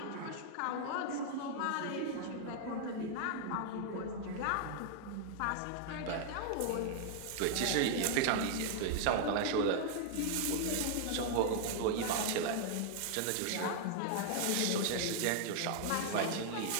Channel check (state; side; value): different; both; correlation 0.00